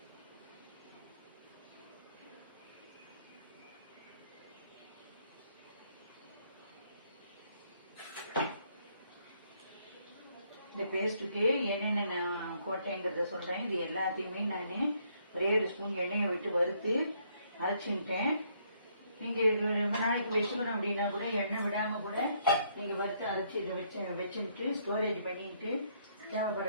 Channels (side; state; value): both; inverted; correlation -0.70